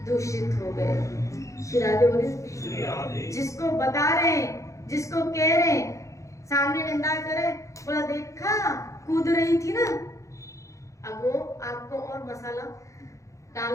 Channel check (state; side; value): late; right; 0.15 ms